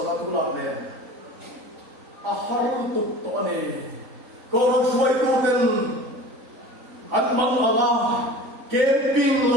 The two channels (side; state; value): left; late; 3.9 ms